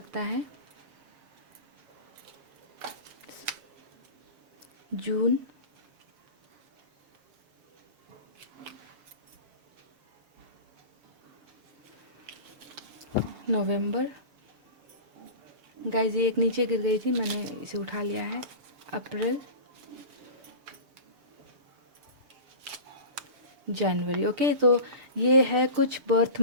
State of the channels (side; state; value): left; late; 7.1 ms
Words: है जून, नवंबर। गाइस ये एक नीचे गिर गई थी, मैंने इसे उठा लिया है। अप्रैल, जनवरी। ओके, तो ये है कुछ बर्थ